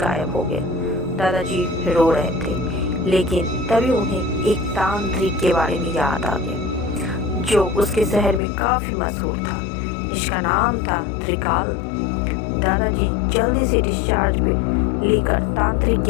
हो गया। दादाजी रो रहे थे, लेकिन तभी उन्हें एक तांत्रिक के बारे में याद आ गया जो उसके शहर में काफ़ी मशहूर था, जिसका नाम था त्रिकाल। दादाजी जल्दी से डिस्चार्ज पे लेकर तांत्रिक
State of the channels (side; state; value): right; drops out; at 8.4 s